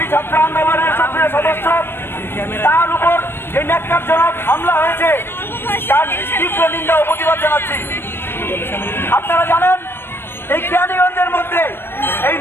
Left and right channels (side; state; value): right; late; 0.11 ms